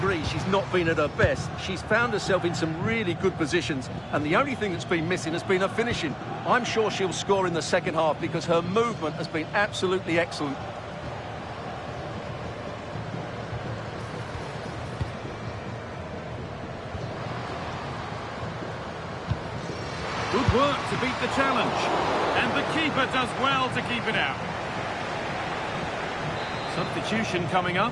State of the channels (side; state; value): both; identical; correlation 1.00